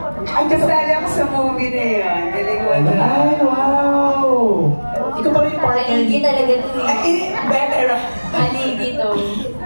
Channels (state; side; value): inverted; both; correlation -1.00